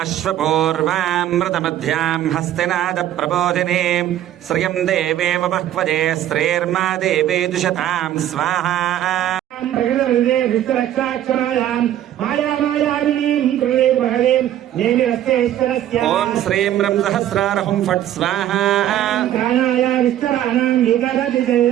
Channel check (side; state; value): left; quieter; 12.0 dB